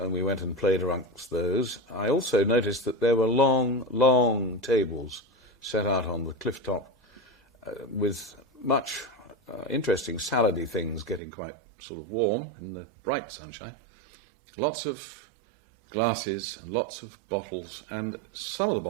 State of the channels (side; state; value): left; drops out; at 11.2 s